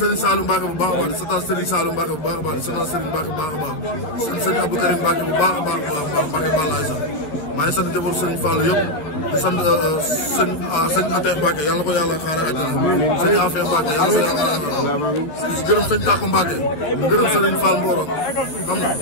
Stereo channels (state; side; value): late; right; 13 ms